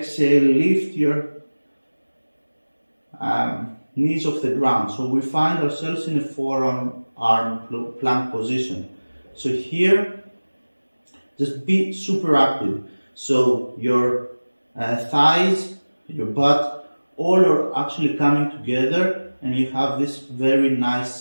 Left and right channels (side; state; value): both; inverted; correlation -1.00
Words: lift your knees off the ground. So we find ourselves in a forearm arm plank position. So here, just be super active. So your thighs, your butt, all are actually coming together and you have this very nice